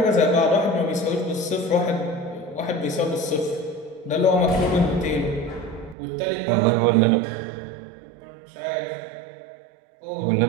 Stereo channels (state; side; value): drops out; left; at 6.0 s